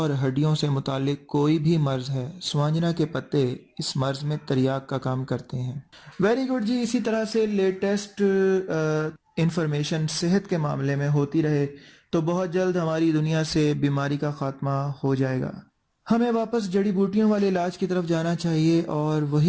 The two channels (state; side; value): identical; both; correlation 1.00